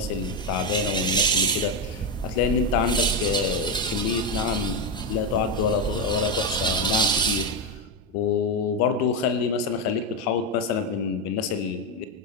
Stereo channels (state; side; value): normal; both; correlation 0.09